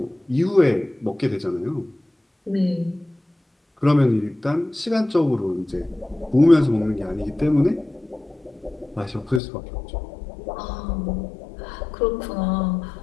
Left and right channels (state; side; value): drops out; right; at 9.4 s